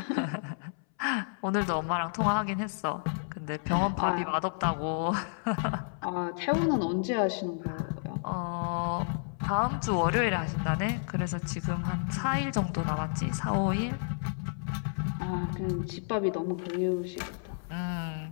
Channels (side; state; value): right; silent; 57 dB below the other